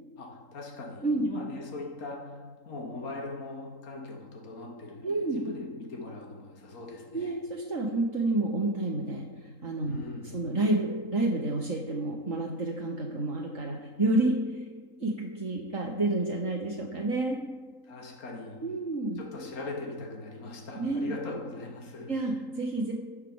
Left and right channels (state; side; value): late; right; 3.8 ms